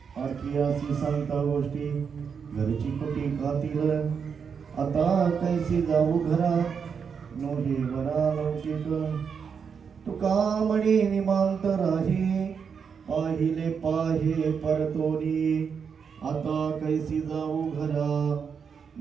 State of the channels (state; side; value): quieter; left; 6.5 dB